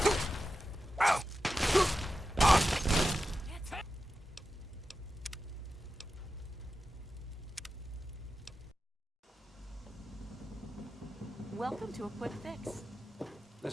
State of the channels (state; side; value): normal; both; correlation 0.92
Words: welcome to a quick fix.